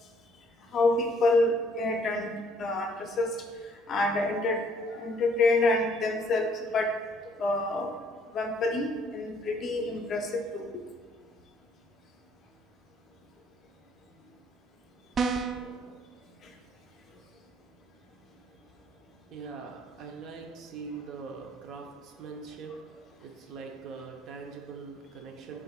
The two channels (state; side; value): normal; both; correlation 0.63